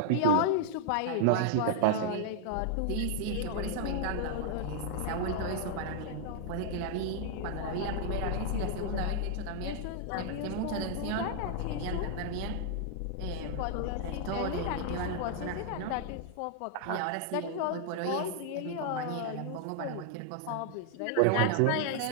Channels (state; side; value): different; both; correlation 0.00